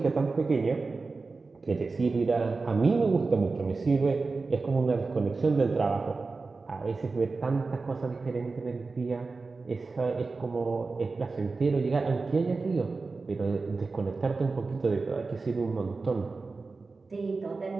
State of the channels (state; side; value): quieter; left; 4.0 dB